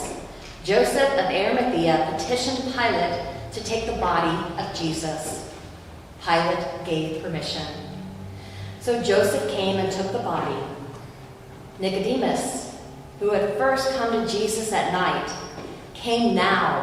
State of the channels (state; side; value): identical; both; correlation 1.00